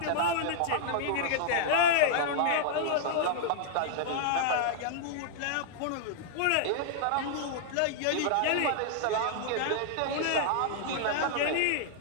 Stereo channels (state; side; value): different; both; correlation -0.01